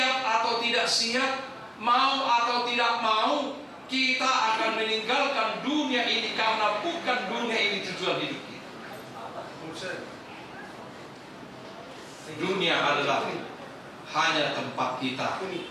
atau tidak siap, mau atau tidak mau, kita akan meninggalkan dunia ini karena bukan dunia ini tujuan hidup kita. Dunia adalah hanya tempat kita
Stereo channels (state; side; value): identical; both; correlation 1.00